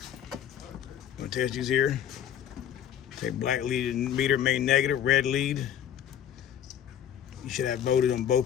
Gonna test these here. Take black lead meter, main negative, red lead. You should have voltage on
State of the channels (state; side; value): quieter; right; 9.8 dB